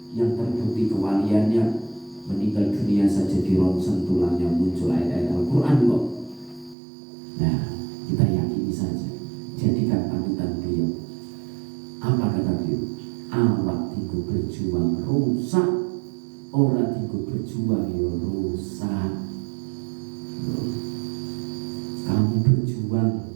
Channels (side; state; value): left; drops out; at 6.8 s